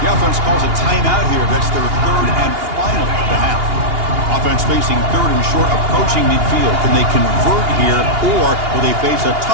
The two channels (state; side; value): late; left; 2.8 ms